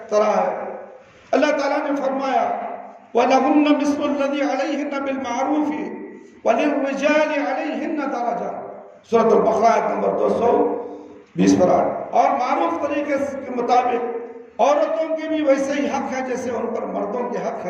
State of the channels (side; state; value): both; identical; correlation 1.00